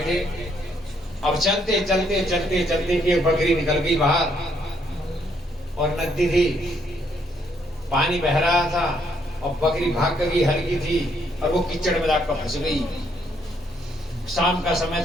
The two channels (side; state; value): both; normal; correlation 0.71